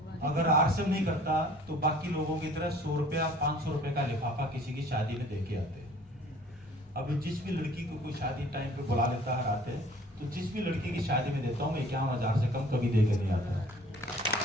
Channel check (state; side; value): normal; both; correlation 0.51